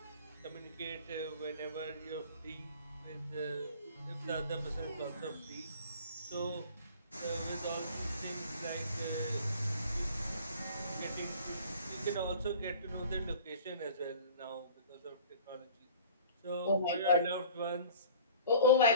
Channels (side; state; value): both; inverted; correlation -0.46